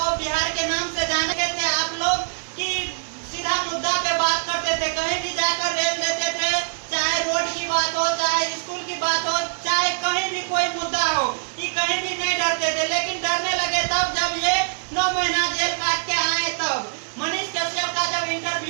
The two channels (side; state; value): left; silent; 63 dB below the other